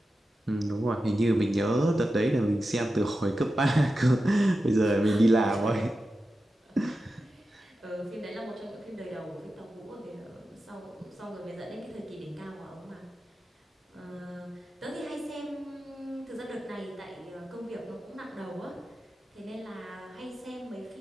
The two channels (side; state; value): both; normal; correlation 0.92